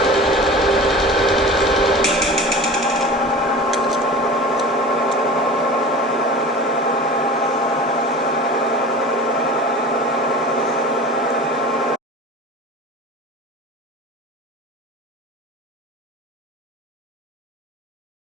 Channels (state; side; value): normal; both; correlation 0.36